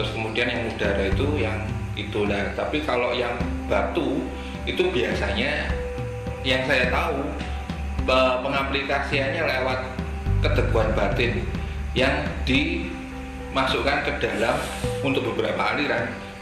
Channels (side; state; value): both; identical; correlation 1.00